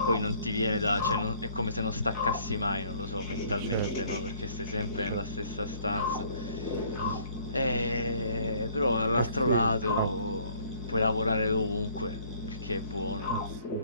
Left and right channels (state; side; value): inverted; both; correlation -0.59